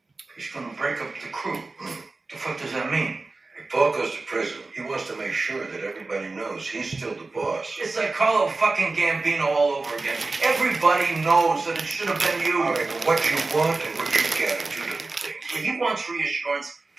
He's gonna break up the crew. The fuck does that mean? If Paul goes to prison, he wants to make sure that everybody knows he's still the boss. It's like Carlo fucking Gambino all over again. Everybody knows that it should have been you. All right, but what you want and what you get are two different things. If he wants reassurance,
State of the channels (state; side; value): quieter; left; 3.5 dB